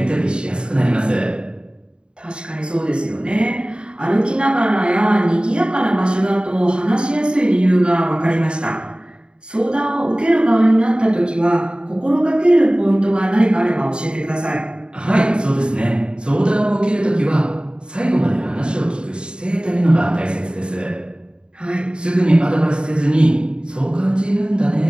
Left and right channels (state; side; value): late; left; 0.052 ms